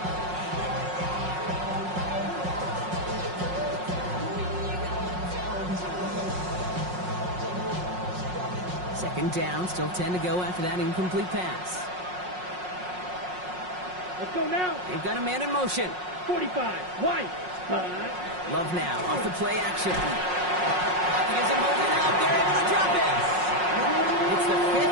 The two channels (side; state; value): left; late; 5.5 ms